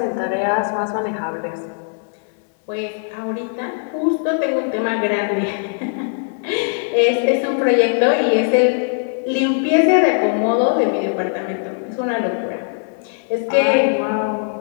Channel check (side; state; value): right; silent; digital silence